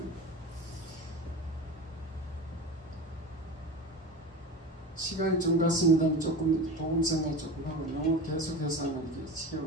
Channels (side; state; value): both; normal; correlation 0.29